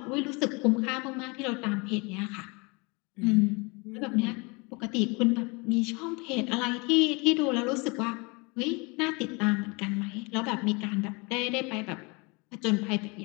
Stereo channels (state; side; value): quieter; right; 28.6 dB